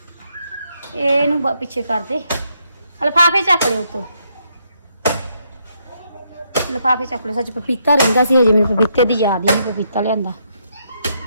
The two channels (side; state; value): both; inverted; correlation -0.76